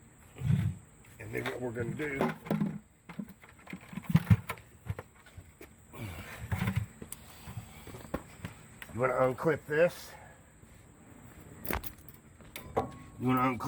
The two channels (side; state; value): both; identical; correlation 1.00